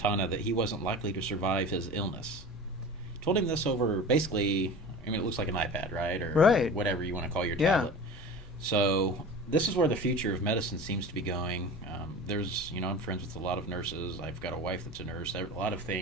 that he wasn't likely to survive his illness. Told him this over basically, I mean, it looks like an iPad, right? Or Right. whatever you want to call your Yeah. tablet. So this is where the future of medicine seems to be going. I'm friends with a lot of nurses. I've got a wife that's a nurse. A lot of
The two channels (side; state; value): both; normal; correlation 0.35